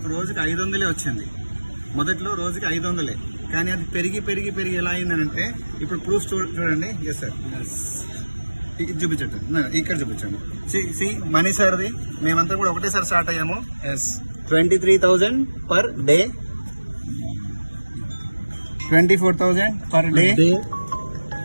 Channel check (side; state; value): both; inverted; correlation -1.00